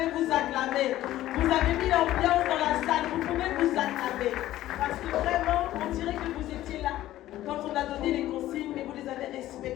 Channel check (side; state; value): right; quieter; 14.4 dB